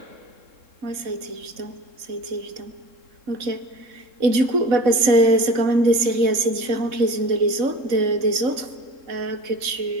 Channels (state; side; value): late; left; 3.7 ms